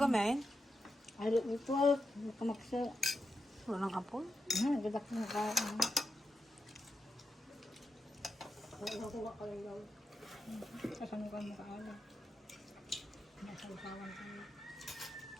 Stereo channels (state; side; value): normal; both; correlation 0.87